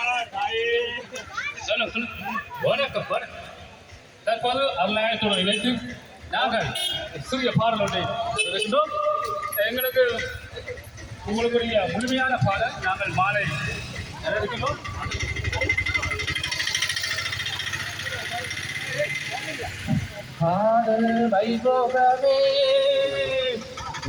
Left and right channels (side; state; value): both; identical; correlation 1.00